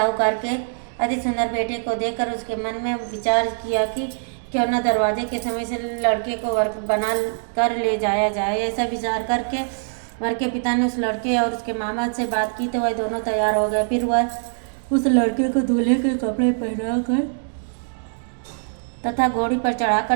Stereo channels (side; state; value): left; silent; digital silence